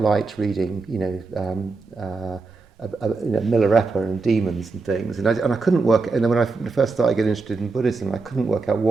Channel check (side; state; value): left; quieter; 4.0 dB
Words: reading, Milarepa and demons and things, and I couldn't work. And then when I first started getting interested in Buddhism, I couldn't work out